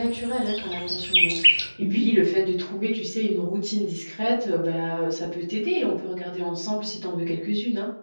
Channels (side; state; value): both; inverted; correlation -1.00